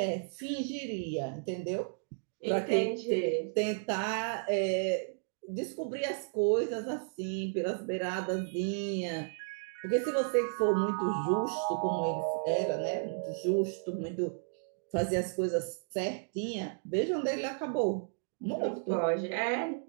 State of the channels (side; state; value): left; silent; digital silence